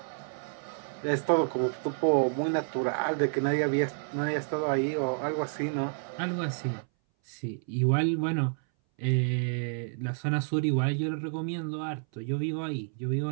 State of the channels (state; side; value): silent; left; 58 dB below the other